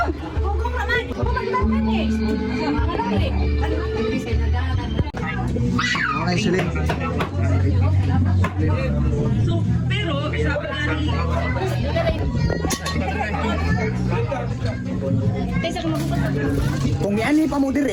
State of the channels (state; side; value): identical; both; correlation 1.00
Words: Hugong naman. Hugong naman eh. Okay, sige. Kung yan pa mo